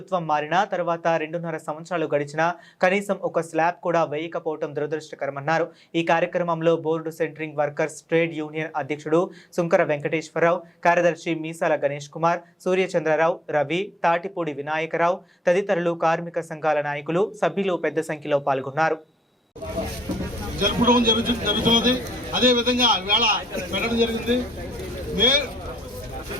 మారిన తర్వాత 2.5 సంవత్సరాలు గడిచినా కనీసం ఒక స్లాబ్ కూడా వేయకపోవడం దురదృష్టకరమన్నారు. ఈ కార్యక్రమంలో board centring workers trade union అధ్యక్షుడు సుంకర వెంకటేశ్వరరావు, కార్యదర్శి మీసాల గణేష్ కుమార్, సూర్యచంద్రరావు, రవి, తాటిపూడి వినాయకరావు తదితరులు కార్మిక సంఘాల నాయకులు, సభ్యులు పెద్ద సంఖ్యలో పాల్గొన్నారు. జరుగుతున్నది. అదే విధంగా వేళ పెట్టడం జరిగింది.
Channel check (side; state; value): both; normal; correlation 0.77